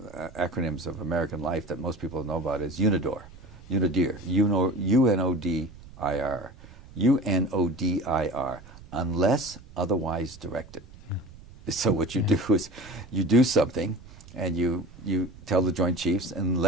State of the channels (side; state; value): right; noise; rumble, 20 dB below the sound